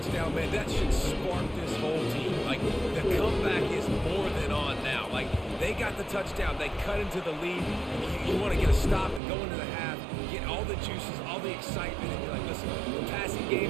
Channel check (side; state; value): left; drops out; at 9.2 s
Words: man, that should spark this whole team. Like, the comeback is more than on now. Like, they got the touchdown. They cut into the lead. You want to get a stop and go into the half, get all the juices, all the excitement, and you're like, listen, the passing